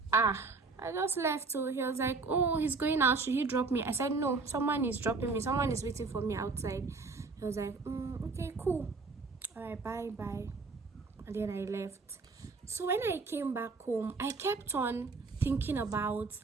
I just left. So he was like, oh, he's going out. Should he drop me? I said, no, someone is dropping me. Someone is waiting for me outside. He was like, okay, cool. All right, bye. And then I left. So when I came back home, I kept on thinking about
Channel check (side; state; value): left; quieter; 4.2 dB